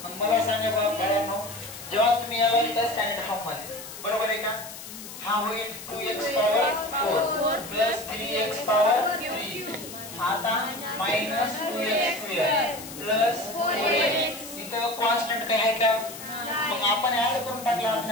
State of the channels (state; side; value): noise; left; hiss, 13 dB below the sound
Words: मग मला सांगा बाळांनो जेव्हा तुम्ही याला लिहिता स्टँडर्ड फॉर्म मध्ये बरोबर आहे का हा होईल 2x power 4 plus 3x power 3 आता minus 2x square plus 4x इथं कॉन्स्टंट काय आहे का मग आपण ऍड करून टाकला